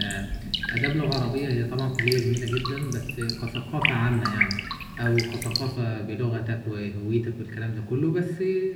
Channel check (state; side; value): identical; both; correlation 1.00